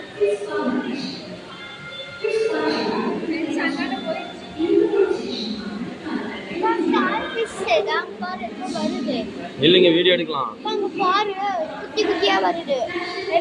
இல்லைங்க வீடியோ எடுக்கலாம். பாரு குட்டி குட்டியா வருது.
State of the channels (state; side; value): identical; both; correlation 1.00